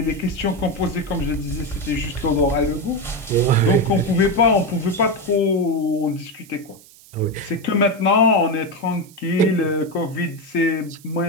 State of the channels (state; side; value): noise; right; hiss, 24 dB below the sound